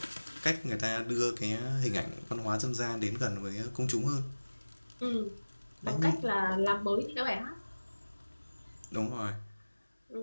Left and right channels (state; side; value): inverted; both; correlation -1.00